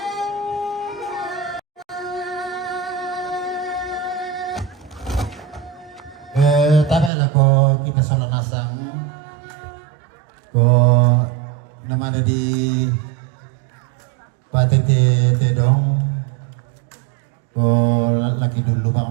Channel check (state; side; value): drops out; left; at 7.1 s